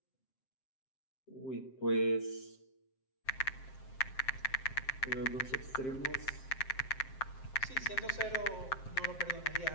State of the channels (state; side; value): late; right; 7.6 ms